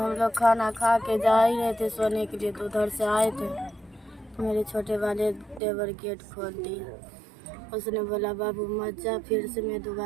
लोग खाना खा के जा ही रहे थे सोने के लिए, तो उधर से आए थे तो मेरे छोटे वाले देवर गेट खोल दिया। उसने बोला बाबू मत जा, फिर से मैं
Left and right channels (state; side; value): drops out; left; at 5.6 s